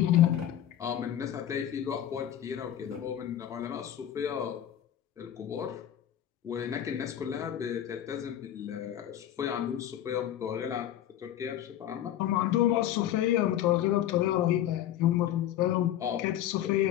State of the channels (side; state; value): right; quieter; 11.4 dB